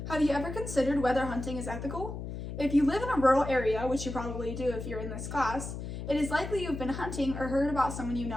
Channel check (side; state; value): left; noise; hum, 7 dB below the sound